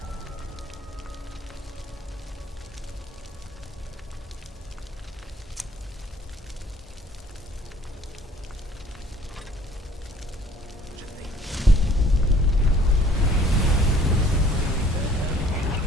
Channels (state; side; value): normal; both; correlation 0.56